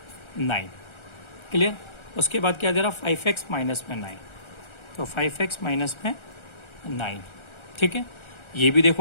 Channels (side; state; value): right; late; 1.3 ms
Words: 9। क्लियर। उसके बाद क्या दे रहा? 5x माइनस में 9, तो 5x माइनस में 9। ठीक है, ये भी